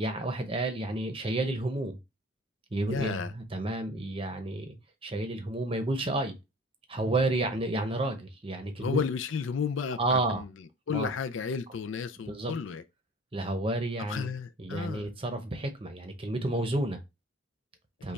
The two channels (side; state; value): both; normal; correlation 0.46